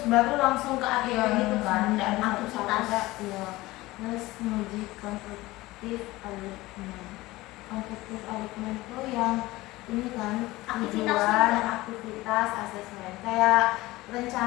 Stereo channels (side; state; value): right; quieter; 19.1 dB